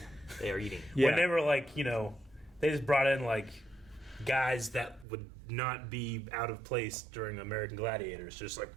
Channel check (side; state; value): left; drops out; at 5.1 s